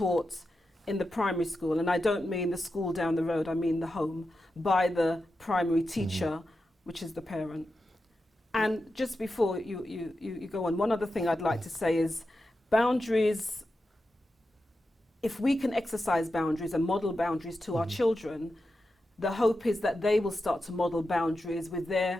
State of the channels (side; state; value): both; normal; correlation 0.90